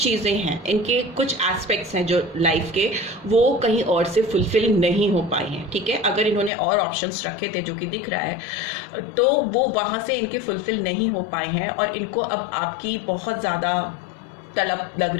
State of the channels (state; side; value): drops out; right; at 6.5 s